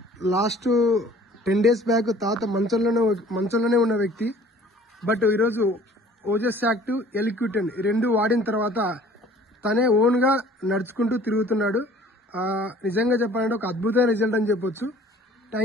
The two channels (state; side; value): normal; both; correlation 0.52